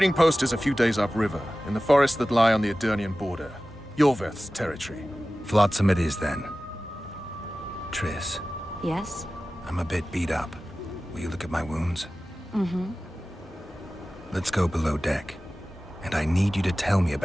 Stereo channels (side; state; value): both; normal; correlation 0.96